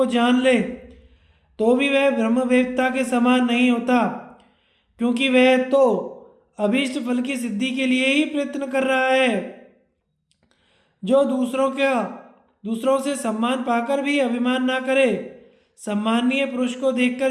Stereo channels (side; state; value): both; identical; correlation 1.00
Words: जान ले तो भी वह ब्रह्मवेत्ता के समान नहीं होता, क्योंकि वह तो अभीष्ट फल की सिद्धि के लिए ही प्रयत्न कर रहा है। जो दूसरों से सम्मान पाकर भी अभिमान ना करे, सम्मानीय पुरुष को